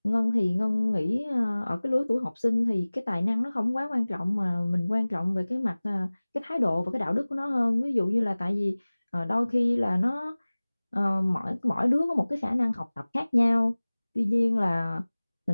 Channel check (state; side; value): inverted; both; correlation -0.99